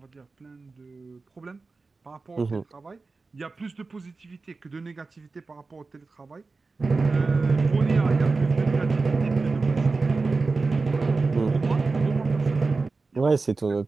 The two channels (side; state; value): left; quieter; 4.0 dB